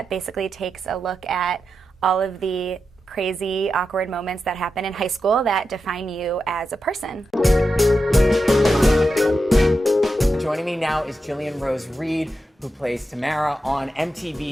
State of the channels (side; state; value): both; normal; correlation 0.89